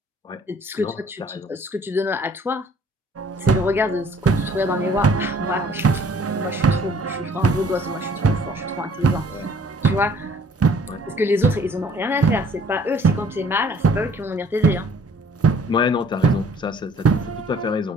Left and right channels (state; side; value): normal; both; correlation 0.57